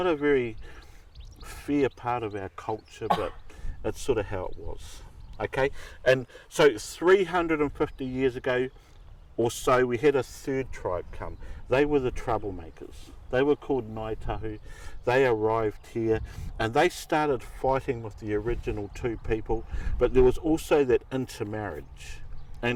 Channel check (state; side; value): identical; both; correlation 1.00